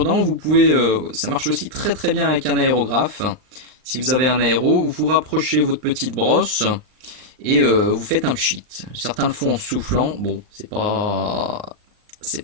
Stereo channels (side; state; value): left; late; 39 ms